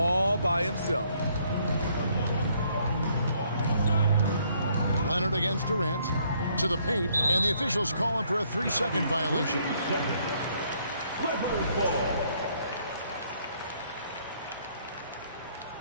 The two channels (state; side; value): inverted; both; correlation -0.67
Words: by himself. Leonard against Durant. To the paint, and the officials call him for a 3-second violation.